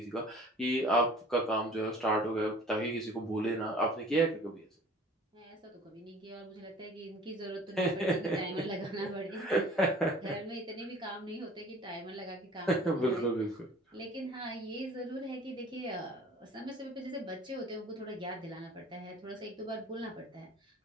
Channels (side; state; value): both; normal; correlation 0.48